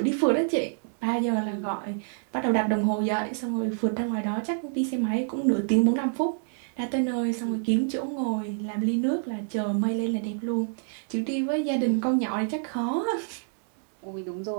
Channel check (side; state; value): left; silent; digital silence